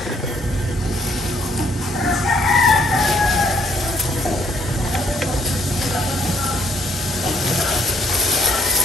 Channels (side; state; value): both; normal; correlation 0.68